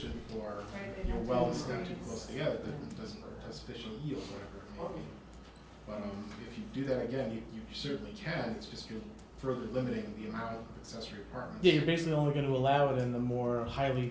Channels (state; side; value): identical; both; correlation 1.00